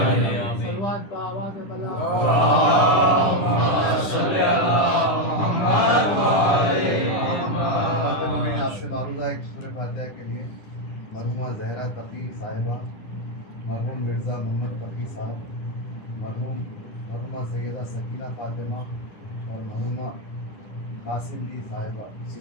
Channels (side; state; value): right; late; 10 ms